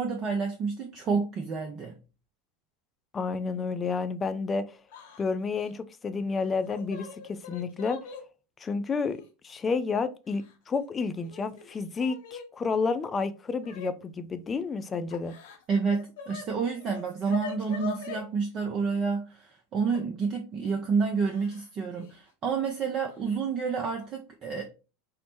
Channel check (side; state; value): both; normal; correlation 0.63